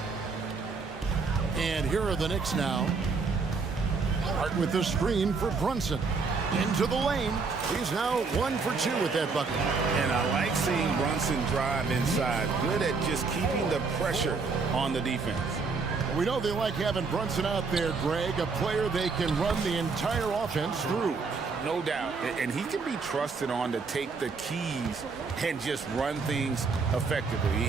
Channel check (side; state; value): left; quieter; 4.6 dB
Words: And here are the Knicks now. Hart with the screen for Brunson. Into the lane. He's now 1 for 2 with that bucket. And I like seeing Brunson drive inside. Good at just keeping the pressure on the defense. We know they like having Brunson out there, Greg, a player they can run the entire offense through. No doubt. And he can be trusted on to take the keys and just run things